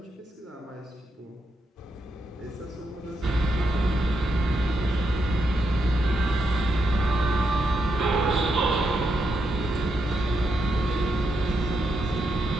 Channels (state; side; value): normal; both; correlation 0.82